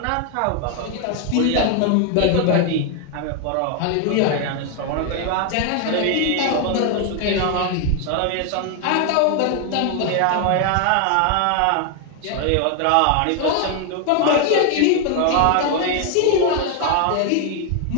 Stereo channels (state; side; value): different; both; correlation 0.01